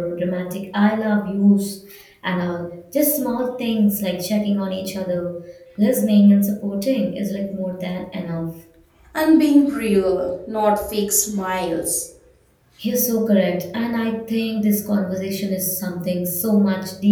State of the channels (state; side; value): identical; both; correlation 1.00